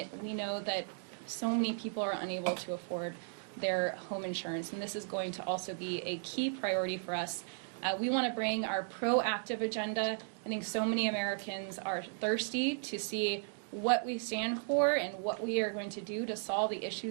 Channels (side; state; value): left; silent; digital silence